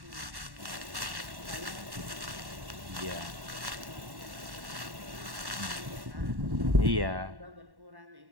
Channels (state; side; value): late; left; 1.1 ms